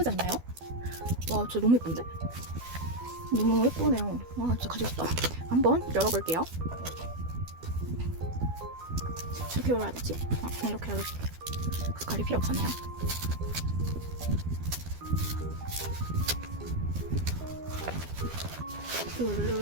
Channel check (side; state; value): left; late; 12 ms